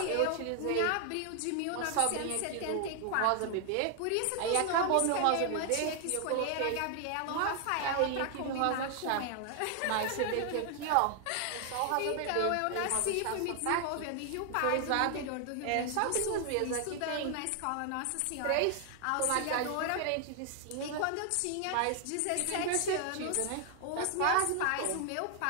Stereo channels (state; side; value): different; both; correlation 0.00